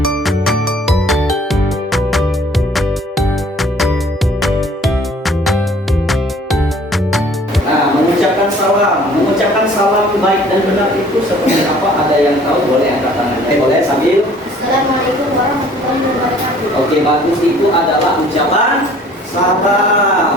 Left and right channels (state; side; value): normal; both; correlation 0.54